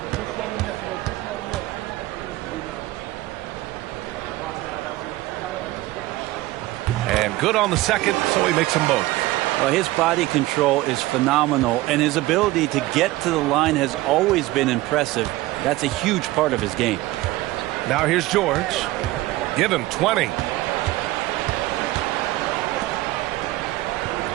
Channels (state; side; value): quieter; left; 18.1 dB